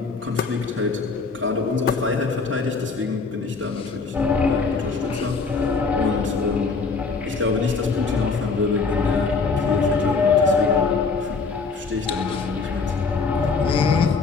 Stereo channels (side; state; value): right; quieter; 4.5 dB